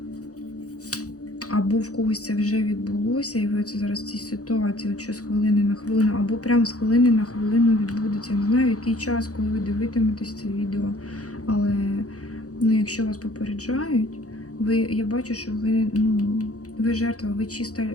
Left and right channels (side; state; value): right; late; 0.66 ms